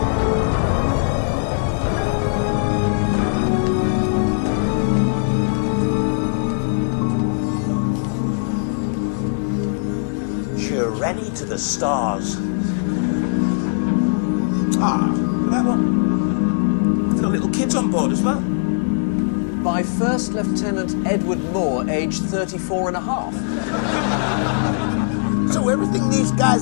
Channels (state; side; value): silent; right; 66 dB below the other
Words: Journey to the stars. Ah, that one. I've got little kids on board as well. By First Lieutenant Edward Moore, aged 34 and a half. So everything these